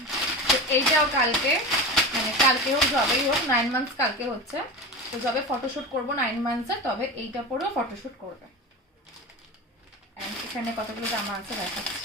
এইটাও কালকে, মানে কালকে হোক যবেই হোক, 9 মান্থস কালকে হচ্ছে, তো যবে ফটোশুট করবো 9 মান্থসের, তবে এইটা পরেও ফটোশুট করবে। এখানে কতগুলো জামা আছে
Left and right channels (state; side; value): normal; both; correlation 0.26